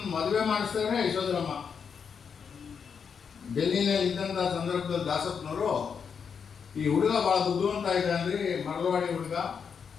ಮದುವೆ ಮಾಡಿಸ್ತಾರೆ. ಯಶೋಧರಮ್ಮ ಡೆಲ್ಲಿನಲ್ಲಿ ಇದ್ದಂಥ ಸಂದರ್ಭದಲ್ಲಿ ದಾಸಪ್ಪನವರು ಈ ಹುಡುಗ ಭಾಳ ಬುದ್ಧಿವಂತ ಇದ್ದಾನ್ರಿ, ಮರಳವಾಡಿ ಹುಡುಗ,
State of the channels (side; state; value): right; quieter; 6.5 dB